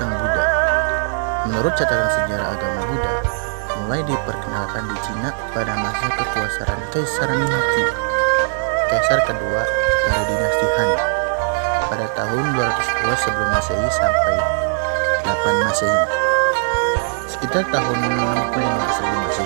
Buddha. Menurut catatan sejarah agama Buddha, mulai diperkenalkan di Cina pada masa kekuasaan Kaisar Mingqi, kaisar kedua dari dinasti Han, pada tahun 202 sebelum Masehi sampai 8 Masehi, sekitar tahun 65 sebelum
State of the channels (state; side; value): silent; left; digital silence